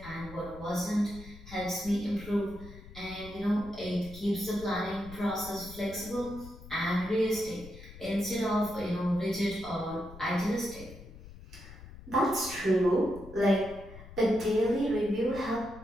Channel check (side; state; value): left; noise; rumble, 16 dB below the sound